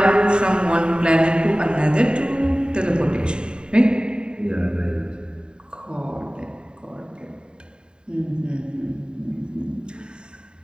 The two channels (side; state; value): left; late; 0.049 ms